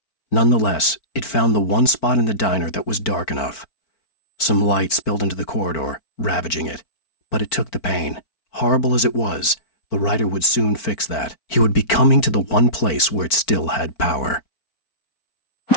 Nonetheless, it found the one spot in the diner that was dark enough. Some light spilled into the corridor, ravaging it. But it took the pain. Horrible as it was, the writer would soon fix that. He would be coming to the one place where it still had power.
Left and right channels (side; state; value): right; late; 4.5 ms